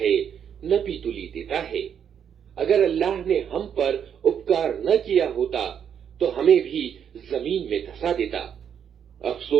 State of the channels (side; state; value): left; quieter; 8.2 dB